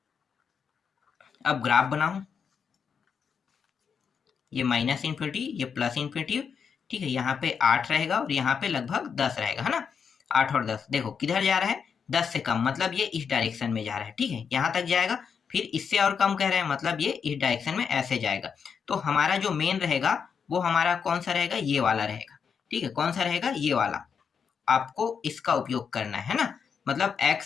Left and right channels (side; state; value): right; quieter; 6.5 dB